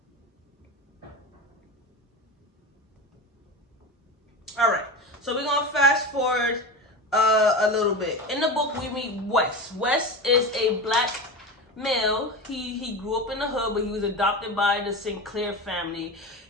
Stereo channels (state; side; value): normal; both; correlation 0.25